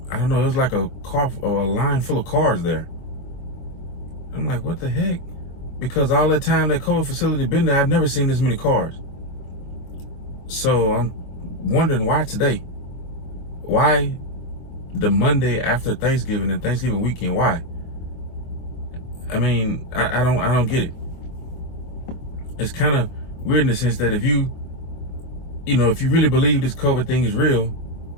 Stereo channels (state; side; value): late; right; 23 ms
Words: I don't know, it was like a line full of cars there. I'm like, what the heck? Because all that time that COVID facility been there, I've never seen this many cars. So I'm wondering why today? Why the Monday after Thanksgiving and Thanksgiving weekend? Why? I mean, I don't get it. It's kind of weird in the sense that if you really believe this COVID thing is real,